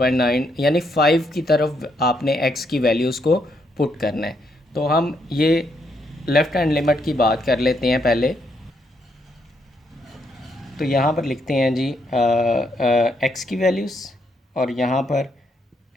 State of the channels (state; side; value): normal; both; correlation 0.76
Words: यानी 5 की तरफ आपने एक्स की वैल्यूज़ को पुट करना है। तो हम ये लेफ़्ट हैंड लिमिट की बात कर लेते हैं पहले। तो यहाँ पर लिखते हैं जी एक्स की वैल्यूज़ और यहाँ पर